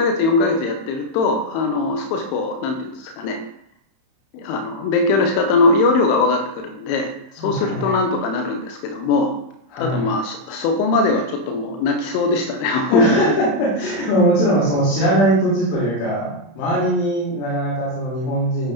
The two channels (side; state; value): right; late; 31 ms